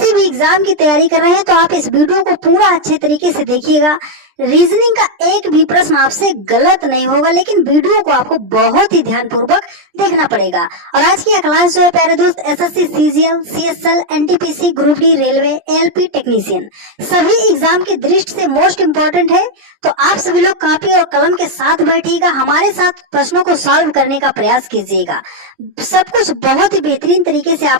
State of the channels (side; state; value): left; late; 20 ms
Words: भी एग्जाम की तैयारी कर रहे हैं तो आप इस वीडियो को पूरा अच्छे तरीके से देखिएगा। रीजनिंग का एक भी प्रश्न आपसे गलत नहीं होगा, लेकिन वीडियो को आपको बहुत ही ध्यानपूर्वक देखना पड़ेगा। और आज की यह क्लास जो है प्यारे दोस्त, SSC, CGL, CSL, NTPC, group D, railway, LP technician सभी एग्जाम की दृष्टि से मोस्ट इंपॉर्टेंट है। तो आप सभी लोग कॉपी और कलम के साथ बैठिएगा, हमारे साथ प्रश्नों को सॉल्व करने का प्रयास कीजिएगा। सब कुछ बहुत ही बेहतरीन तरीके से